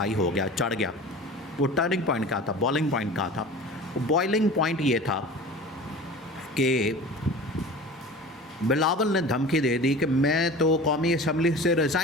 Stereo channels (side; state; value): both; normal; correlation 0.37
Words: हो गया, चढ़ गया, वो टर्निंग पॉइंट का था, बॉइलिंग पॉइंट का था। बॉइलिंग पॉइंट ये था कि बिलावल ने धमकी दे दी कि मैं तो कौमी असम्बली से